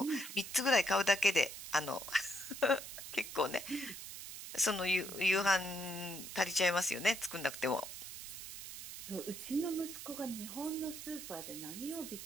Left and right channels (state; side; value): noise; right; hiss, 9 dB below the sound